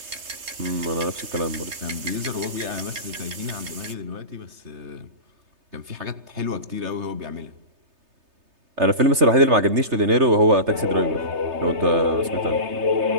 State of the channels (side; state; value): left; late; 3.3 ms